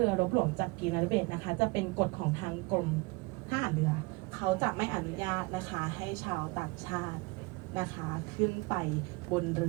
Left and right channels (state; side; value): quieter; left; 25.8 dB